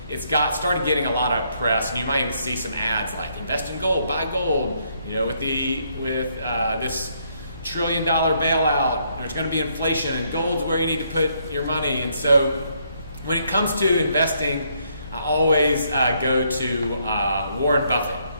it's started getting a lot of press, and you might even see some ads like invest in gold, buy gold, with this $1 trillion bailout, there's going to be inflation, and gold's where you need to put your money. And so when it comes to investing, I always go to Warren Buffett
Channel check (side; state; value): both; inverted; correlation -0.71